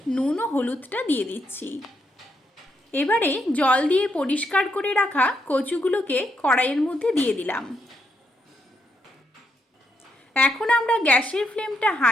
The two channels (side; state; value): both; normal; correlation 0.79